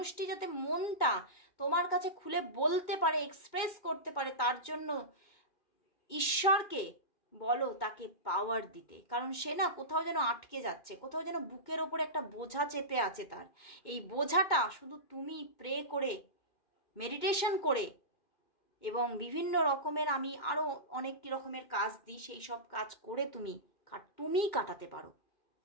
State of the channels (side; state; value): right; late; 2.2 ms